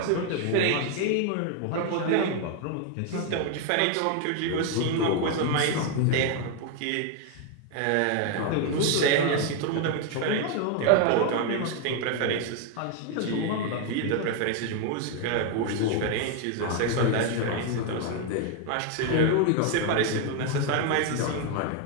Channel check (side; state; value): both; different; correlation 0.01